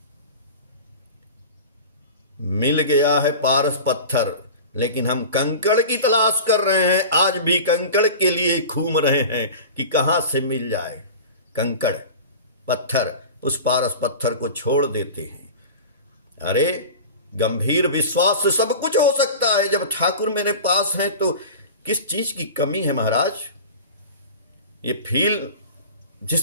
मिल गया है पारस पत्थर, लेकिन हम कंकड़ की तलाश कर रहे हैं। आज भी कंकड़ के लिए घूम रहे हैं कि कहां से मिल जाए कंकड़ पत्थर। उस पारस पत्थर को छोड़ देते हैं। अरे गंभीर विश्वास से सब कुछ हो सकता है। जब ठाकुर मेरे पास हैं तो किस चीज की कमी है महाराज? ये फील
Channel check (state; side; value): inverted; both; correlation -0.34